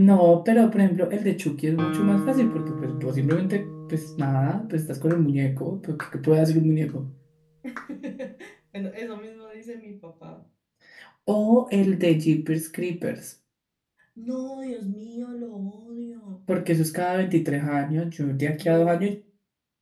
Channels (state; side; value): identical; both; correlation 1.00